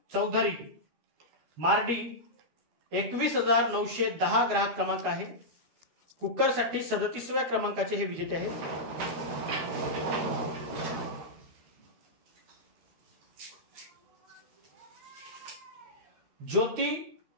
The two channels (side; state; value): left; late; 13 ms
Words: चौधरी मार्डी 21,910 ग्राहक क्रमांक आहे. कुकरसाठी 37व्या क्रमांकाचे हे विजेते आहेत. ज्योती